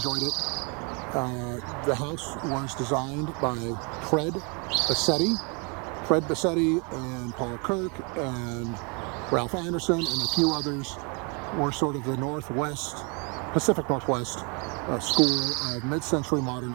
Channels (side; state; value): left; quieter; 33.5 dB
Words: it. The house was designed by Fred Bassetti and Paul Kirk and Ralph Anderson, and a few others were sort of the Pacific Northwest school of mid-century modern